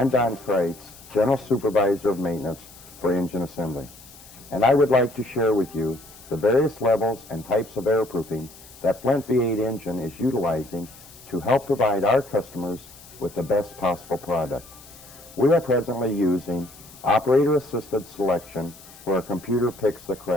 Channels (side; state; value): left; noise; hiss, 21 dB below the sound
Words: Don Kreitz, General Supervisor of Maintenance for Engine Assembly, and I would like to share with you the various levels and types of airproofing that Flint V8 engine is utilizing to help provide our customers with the best possible product. We are presently using operator-assisted selection where a computer picks the